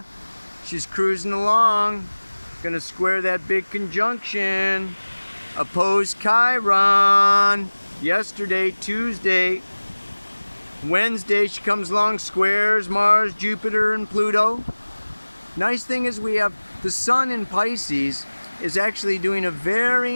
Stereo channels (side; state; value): both; inverted; correlation -1.00